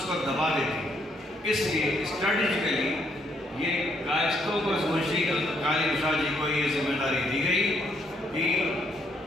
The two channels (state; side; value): normal; both; correlation 0.72